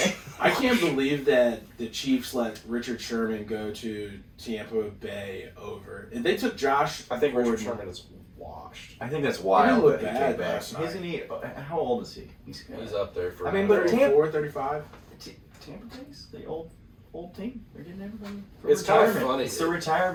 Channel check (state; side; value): identical; both; correlation 1.00